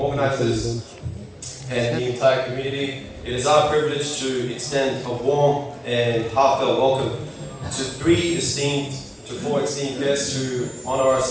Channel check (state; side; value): identical; both; correlation 1.00